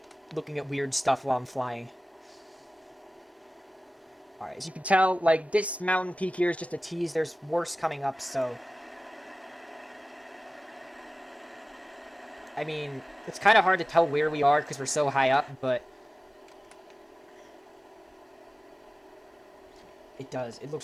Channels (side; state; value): both; normal; correlation 0.97